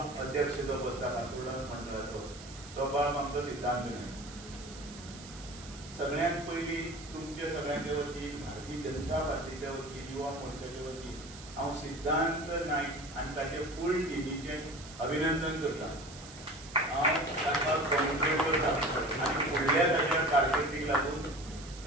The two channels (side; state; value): right; noise; hiss, 16 dB below the sound